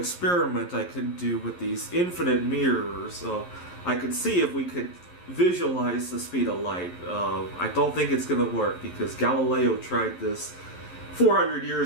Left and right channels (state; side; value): late; right; 11 ms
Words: I could do with these infinite mirrors. So I could see if we could visualize the speed of light. I don't think it's going to work because Galileo tried this 400